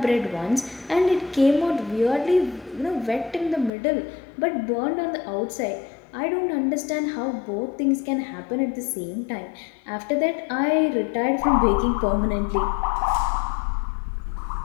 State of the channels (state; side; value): drops out; right; at 3.7 s